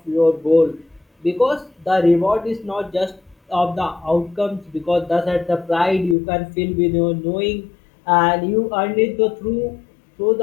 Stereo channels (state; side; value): drops out; right; at 6.2 s